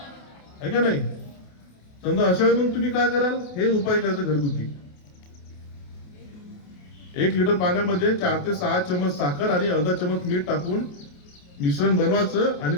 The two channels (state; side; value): late; right; 28 ms